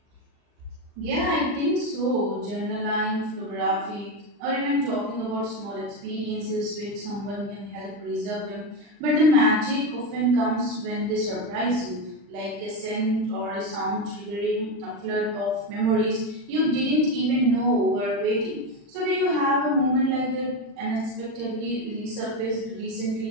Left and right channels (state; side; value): late; left; 40 ms